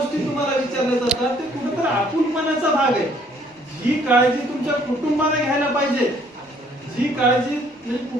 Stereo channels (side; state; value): both; normal; correlation 0.62